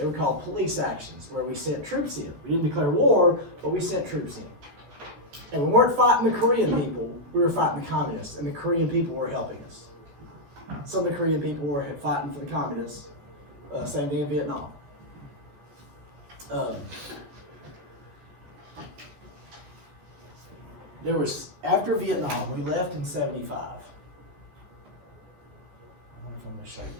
were called police actions, where we sent troops in. We didn't declare war, but we sent troops in. And we weren't fighting the Korean people. We were fighting the communists, and the Korean people were helping us. Some of the Korean people were fighting for the communists. Same thing in Vietnam. After Vietnam, we left in 75. I wonder if I'm going to show you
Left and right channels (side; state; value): left; late; 14 ms